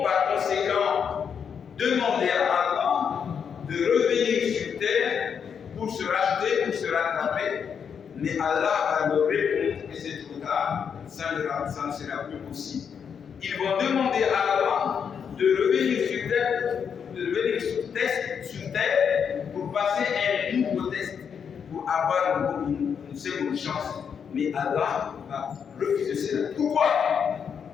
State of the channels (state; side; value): quieter; right; 7.1 dB